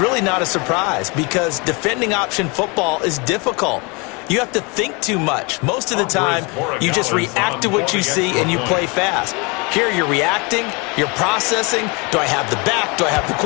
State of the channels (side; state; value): right; quieter; 29.6 dB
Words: not a surprise because defending option football is difficult. You have to think too much. Most of the time, you just react to what you see and you play fast. Here you're reacting, you're processing. Do I have the back? Do I have the